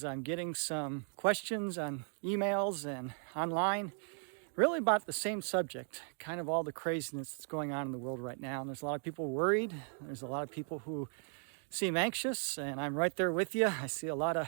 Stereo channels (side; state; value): left; silent; 53 dB below the other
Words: I'm getting some questions on emails and online really about the same subject, kind of all the craziness that's going on in the world right now. And there's a lot of people worried. There's a lot of people who seem anxious, and I'm right there with you. I see a lot